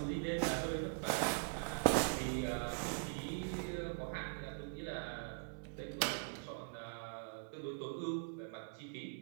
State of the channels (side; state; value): left; silent; digital silence